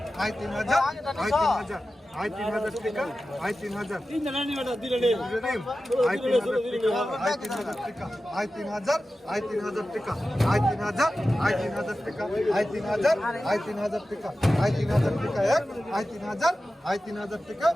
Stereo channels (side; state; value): both; normal; correlation 0.94